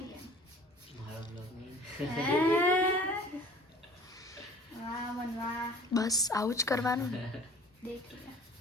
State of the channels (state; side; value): normal; both; correlation 0.48